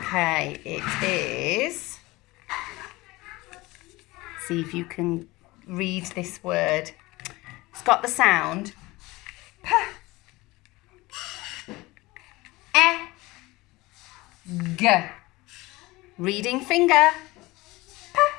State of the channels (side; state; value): right; quieter; 20.9 dB